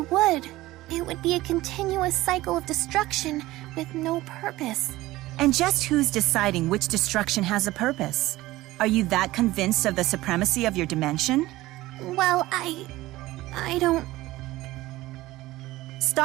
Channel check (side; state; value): left; quieter; 17.6 dB